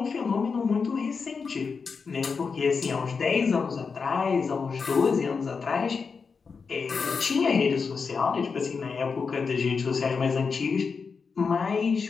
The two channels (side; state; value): right; quieter; 5.2 dB